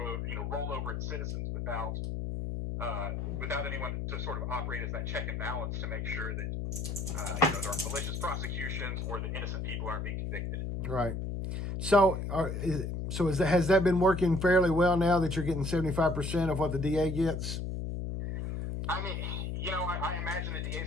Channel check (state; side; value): noise; left; hum, 3 dB below the sound